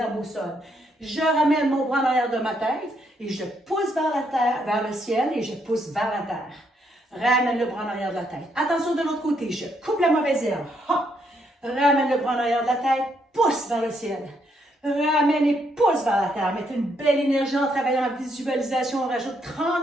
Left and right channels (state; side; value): normal; both; correlation 0.74